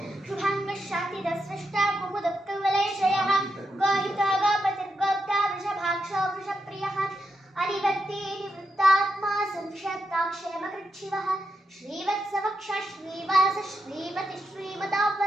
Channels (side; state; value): both; normal; correlation 0.85